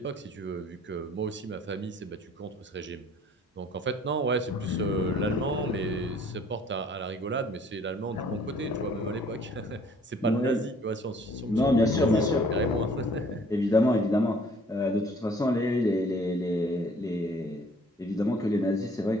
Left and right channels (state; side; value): normal; both; correlation 0.56